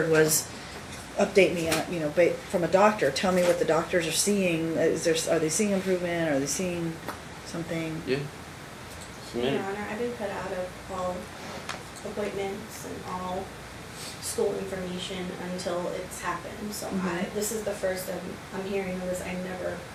was update me on, from a doctor. Tell me what the doctors are seeing. Are they seeing improvement? Are they seeing something? Yeah. Your Honor, I've been put out of all appointments and all school information until it's happened. So Mhm. this is the first I'm hearing of this. I never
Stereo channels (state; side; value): identical; both; correlation 1.00